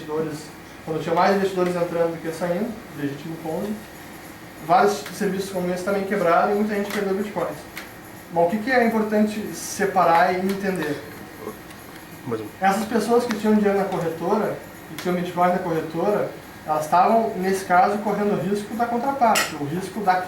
quando tinha mais investidores entrando do que saindo, legítimo Ponzi. Vários serviços como esse também quebraram e muita gente perdeu bitcoins. Bom, o que é importante separar e entender? Essas pessoas que tinham dinheiro na corretora, que tinham bitcoin na corretora, elas estavam, nesse caso, correndo o risco da contraparte, o risco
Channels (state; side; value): identical; both; correlation 1.00